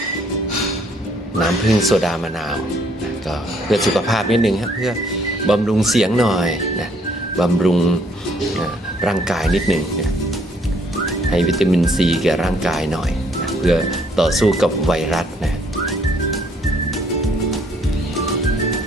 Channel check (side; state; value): both; normal; correlation 0.65